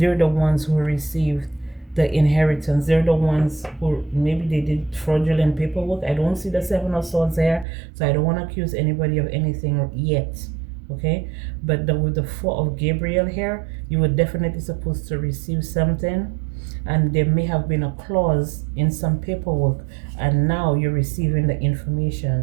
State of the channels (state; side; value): drops out; left; at 7.7 s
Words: the ones who received the inheritance. They're the ones who maybe they did fraudulent paperwork. I don't see the Seven of Swords there, so I don't want to accuse anybody of anything yet. Okay, but with the Four of Gabriel here, you were definitely supposed to receive something, and there may have been a clause in some paperwork, and now you're receiving the